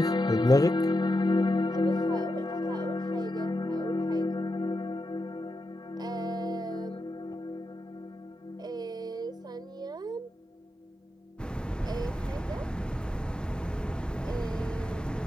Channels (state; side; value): normal; both; correlation 0.87